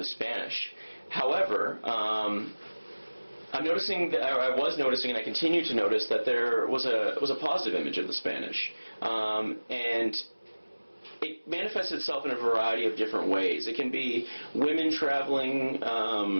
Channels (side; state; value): both; inverted; correlation -1.00